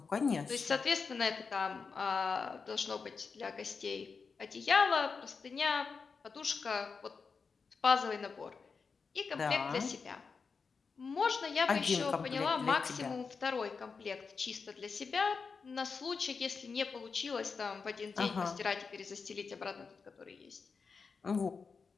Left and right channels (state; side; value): quieter; right; 5.1 dB